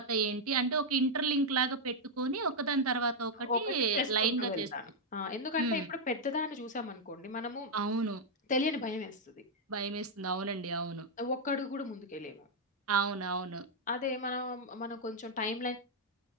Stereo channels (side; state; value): both; normal; correlation -0.02